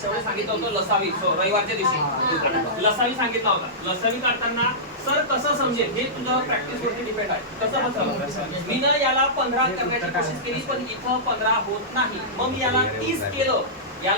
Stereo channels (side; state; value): both; normal; correlation -0.17